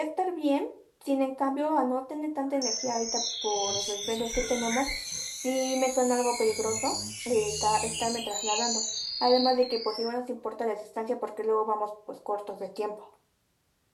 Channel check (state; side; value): identical; both; correlation 1.00